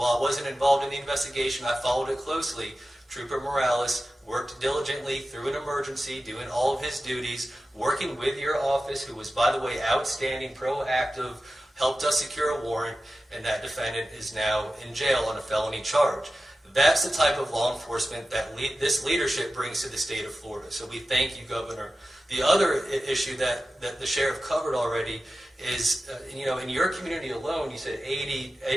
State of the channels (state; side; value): normal; both; correlation 0.94